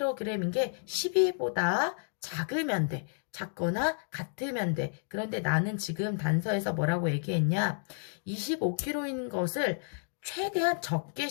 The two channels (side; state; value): right; silent; digital silence